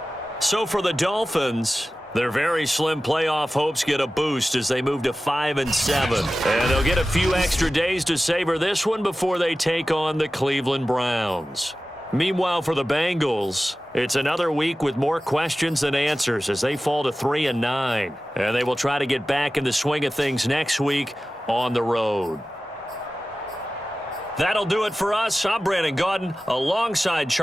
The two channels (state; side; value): normal; both; correlation 0.95